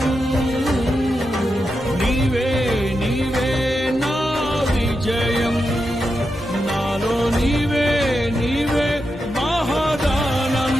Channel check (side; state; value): both; normal; correlation 0.87